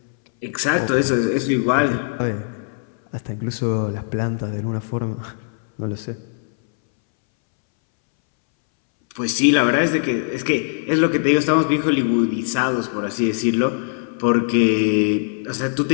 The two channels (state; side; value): silent; right; 64 dB below the other